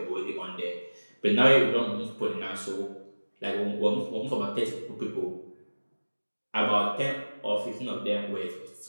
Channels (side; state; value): both; inverted; correlation -1.00